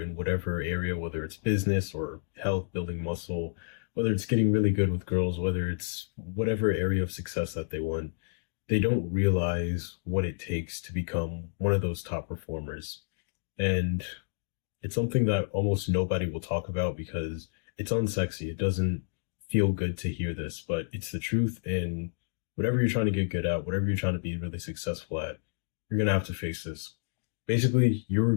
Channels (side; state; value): right; silent; digital silence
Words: whatever area, whether it's business or health, building muscle, whether it's getting really good with girls, whether it's whatever area of success that they want, they don't realize what it takes to become one of those top performers. And it's something that almost nobody will talk about because it's unsexy. It doesn't feel good to hear this, but it's the truth. And whatever you're trying to get good at, whatever you're trying to be really successful at, you're going to have to face this. Basically, you're